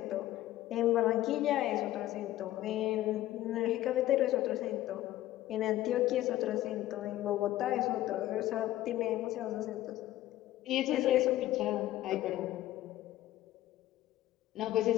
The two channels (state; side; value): quieter; right; 14.7 dB